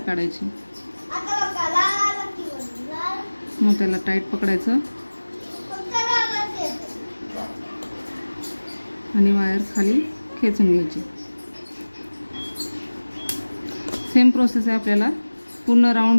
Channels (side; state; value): both; inverted; correlation -1.00